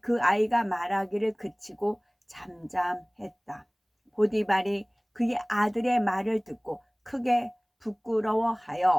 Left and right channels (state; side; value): identical; both; correlation 1.00